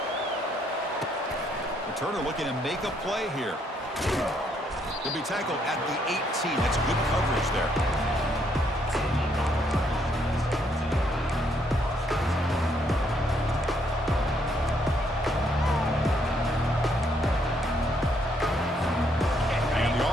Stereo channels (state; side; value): normal; both; correlation 0.71